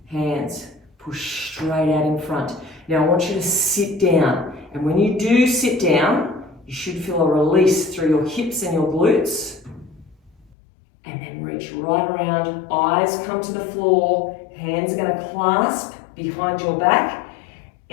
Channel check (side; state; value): right; drops out; at 10.6 s